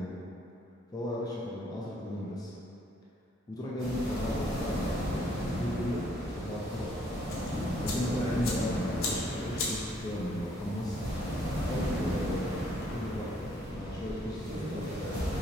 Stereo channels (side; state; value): both; normal; correlation 0.66